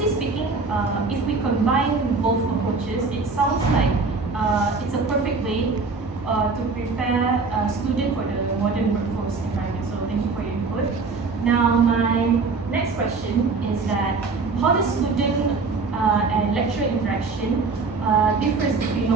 speaking, if we combine both approaches, it sounds like it's a perfect way to prepare a student for the modern workforce environment. So thank you for your input. Now my next question is that how does student and lecturer interaction differs between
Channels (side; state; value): left; quieter; 4.3 dB